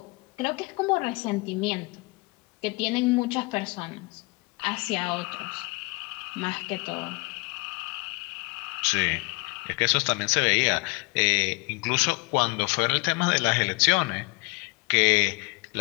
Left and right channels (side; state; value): right; quieter; 27.1 dB